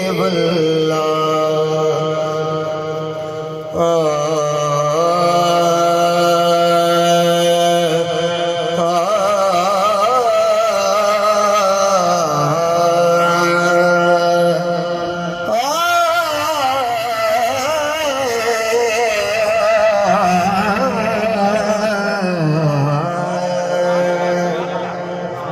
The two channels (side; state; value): both; identical; correlation 1.00